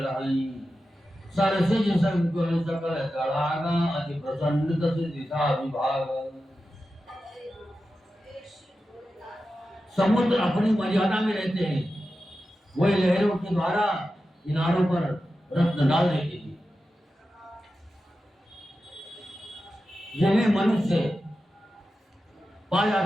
रहाई सरसिज संकुल सकल तड़ागा अति प्रसन्न तस दिशा विभाग। समुद्र अपनी मर्यादा में रहते हैं, वही लहरों के द्वारा किनारों पर रत्न डाल देती थी। जिन्हें मनुष्य पा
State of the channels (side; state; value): both; normal; correlation 0.92